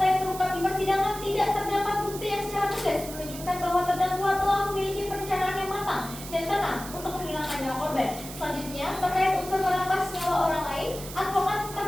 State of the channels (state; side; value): noise; right; hiss, 12 dB below the sound